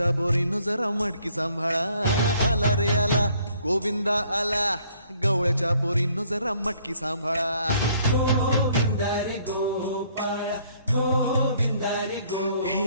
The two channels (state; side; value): inverted; both; correlation -0.63